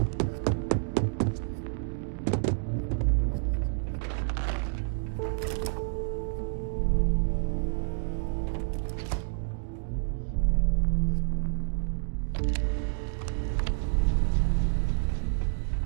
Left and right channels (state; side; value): silent; left; digital silence